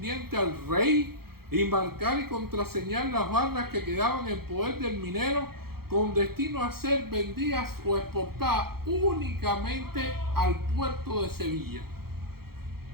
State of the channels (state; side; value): late; left; 0.94 ms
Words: al rey y marcar y contraseñar las barras que quedaban en poder del minero con destino a ser vendidas o exportadas únicamente al puerto de Sevilla.